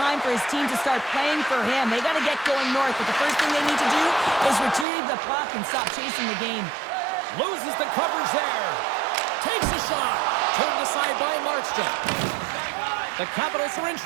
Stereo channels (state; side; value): drops out; left; at 4.9 s